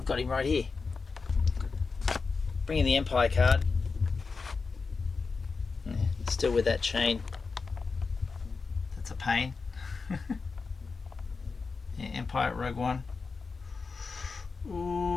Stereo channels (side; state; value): right; quieter; 4.6 dB